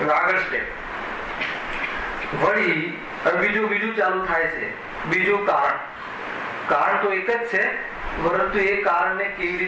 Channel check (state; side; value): identical; both; correlation 1.00